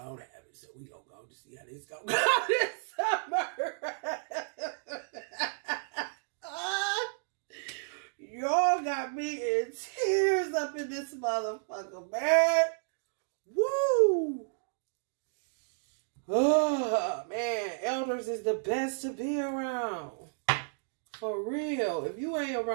and have it. So we gonna go to see how this gonna go this summer. Y'all got me in tears up in this motherfucker, man. Woo! elders is the best to be around. For real. If you ain't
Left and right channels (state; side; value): silent; left; digital silence